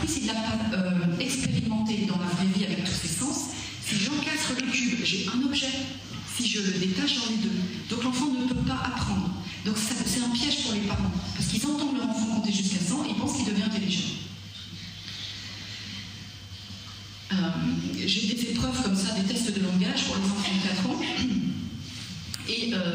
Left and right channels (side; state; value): both; identical; correlation 1.00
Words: il n'a pas expérimenté dans la vraie vie avec tous ses sens. Si j'encastre le cube, j'ai un objet. Si je le détache, j'en ai 2. Donc l'enfant ne peut pas apprendre. Donc c'est un piège pour les parents. Parce qu'ils entendent leur enfant compter jusqu'à 100 et ils pensent qu'il devient intelligent. J'ai des épreuves comme ça, des tests de langage pour les enfants de 4 ans. Et